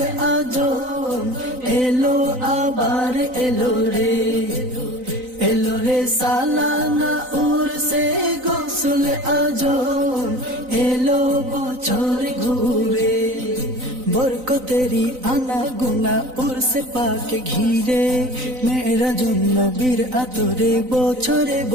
আজম এলো আবার এলো রে সালানা উরসে গৌসল আজম এলো বছর ঘুরে বরকতেরি আনা গুনা উরসে পাকে ঘিরে মেরা জন্য বীর আতরে বছরে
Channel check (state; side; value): late; left; 3.9 ms